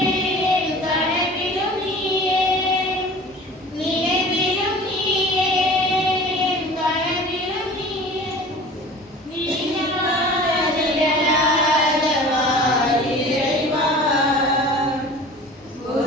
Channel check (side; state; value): both; normal; correlation 0.42